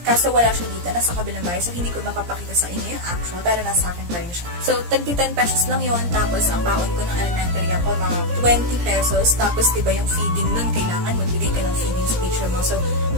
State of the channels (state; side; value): late; left; 17 ms